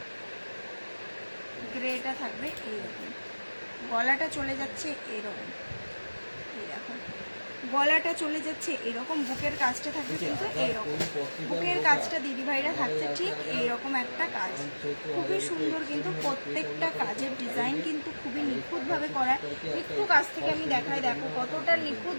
গ্রেটা থাকবে এইরকম, গলাটা চলে যাচ্ছে এরকম, এই দেখো গলাটা চলে যাচ্ছে এরকম, বুকের কাজটা থাকবে কিন্তু এইরকম, বুকের কাজটা দিদিভাইরা থাকছে ঠিক এইরকম একটা কাজ, খুবই সুন্দর কিন্তু প্রত্যেকটা কাজের ডিজাইন কিন্তু খুবই নিখুঁতভাবে করা। একটু কাছ থেকে আমি দেখাই, দেখো কতটা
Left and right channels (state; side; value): inverted; both; correlation -1.00